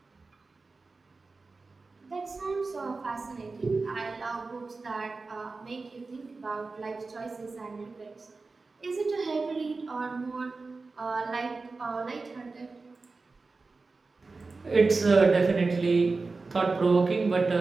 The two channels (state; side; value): quieter; left; 3.9 dB